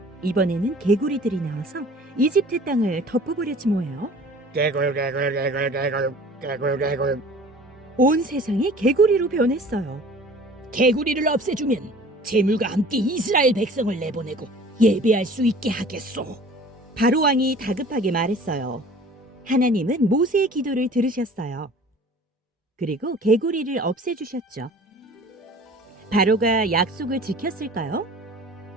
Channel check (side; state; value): both; normal; correlation 0.46